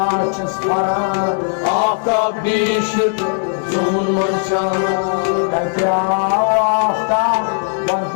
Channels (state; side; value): silent; right; 60 dB below the other